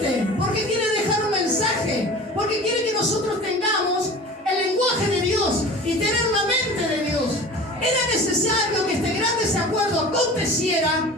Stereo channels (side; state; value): both; normal; correlation 0.39